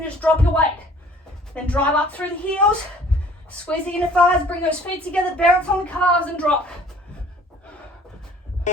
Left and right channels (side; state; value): both; normal; correlation 0.53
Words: just drop your weight. Then drive up through the heels. Squeeze the inner thighs, bring those feet together, balance on the calves and drop.